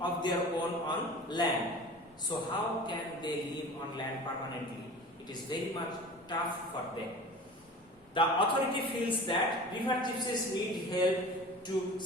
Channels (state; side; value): normal; both; correlation 0.38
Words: of their own on land. So how can they live on land permanently? It is very much tough for them. The authority feels that river gypsies need help to